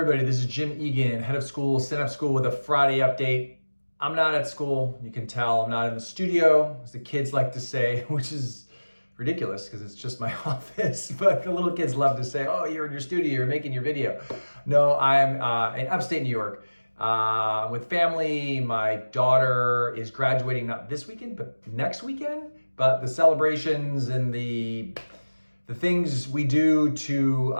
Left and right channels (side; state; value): both; inverted; correlation -1.00